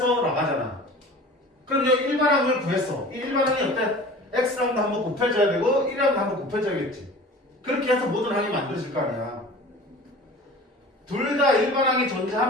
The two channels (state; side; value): normal; both; correlation 0.40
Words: 나가잖아. 그럼 여기 일반항을 구했어. 이 일반항이 어때? x랑도 한번 곱해줘야 되고 1랑도 한번 곱해줘야겠지. 그렇게 해서 모든 항이 만들어질 거 아니야. 둘 다 일반항이